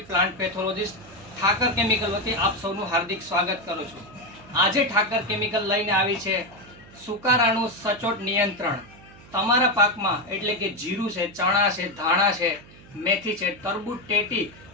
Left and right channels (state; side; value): noise; right; hum, 22 dB below the sound